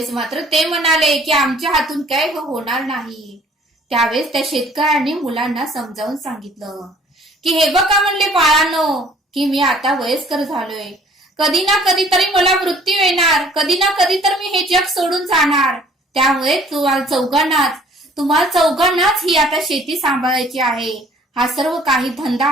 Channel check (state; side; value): normal; both; correlation 0.55